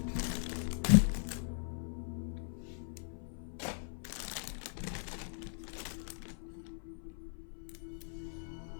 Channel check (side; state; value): right; silent; 52 dB below the other